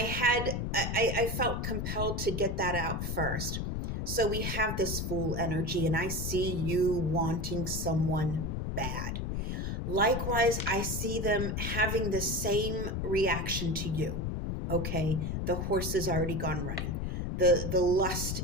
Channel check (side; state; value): left; noise; rumble, 2 dB below the sound